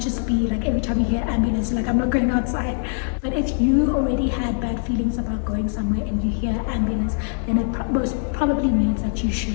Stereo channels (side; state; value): right; silent; digital silence